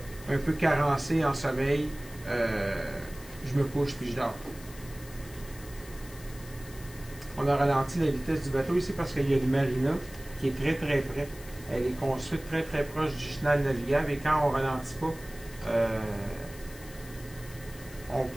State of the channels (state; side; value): noise; left; hiss, 18 dB below the sound